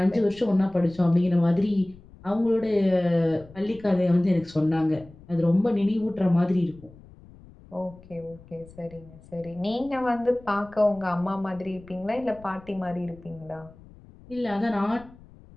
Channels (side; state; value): left; noise; rumble, 22 dB below the sound